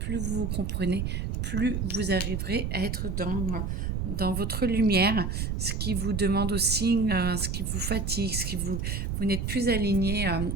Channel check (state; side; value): noise; right; rumble, 2 dB below the sound